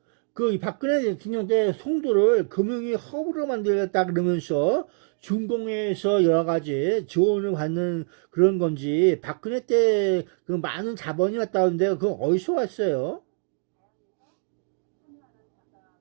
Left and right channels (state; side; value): silent; left; 55 dB below the other